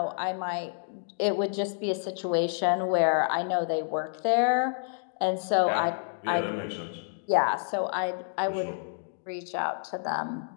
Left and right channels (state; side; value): silent; right; 59 dB below the other